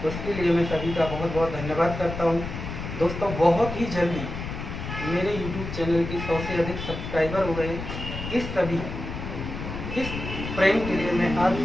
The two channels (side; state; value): left; noise; rumble, 7 dB below the sound